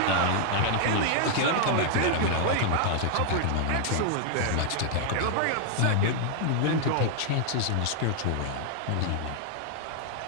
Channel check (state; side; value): different; both; correlation 0.00